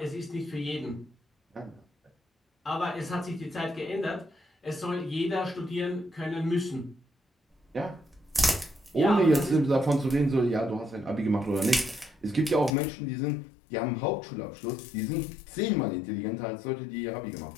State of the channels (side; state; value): right; drops out; at 12.7 s